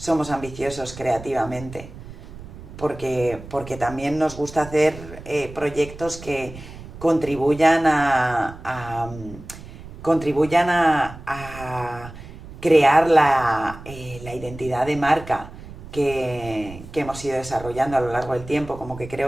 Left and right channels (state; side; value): noise; right; rumble, 15 dB below the sound